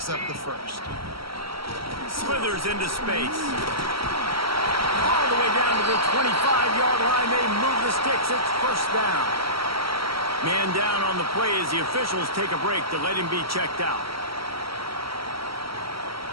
up the first. Slithers into space. All the way down to the 25-yard line. They move the sticks. It's first down. Man down on the play as the officials take a break to let him be checked out.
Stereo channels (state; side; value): late; left; 0.75 ms